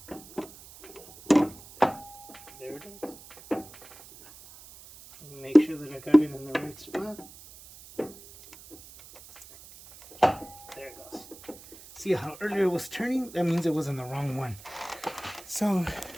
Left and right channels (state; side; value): noise; right; hiss, 19 dB below the sound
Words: There it is. Make sure that I got it in the right spot. There it goes. See how earlier it was turning? That means it was in the wrong one. So,